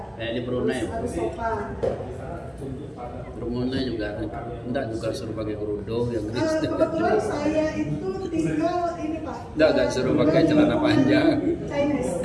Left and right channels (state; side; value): identical; both; correlation 1.00